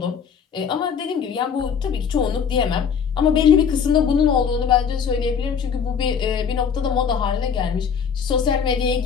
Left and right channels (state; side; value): quieter; right; 6.8 dB